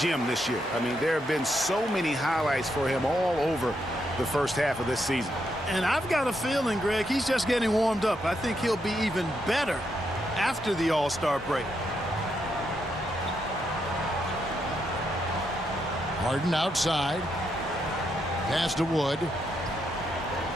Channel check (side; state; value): both; normal; correlation 0.80